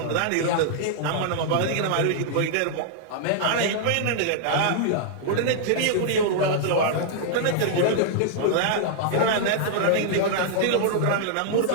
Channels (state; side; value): different; both; correlation -0.01